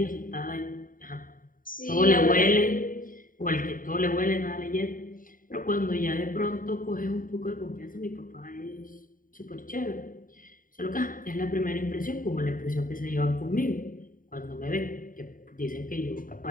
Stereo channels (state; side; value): late; right; 0.40 ms